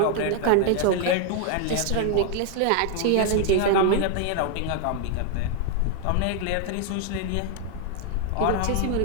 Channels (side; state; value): both; different; correlation 0.00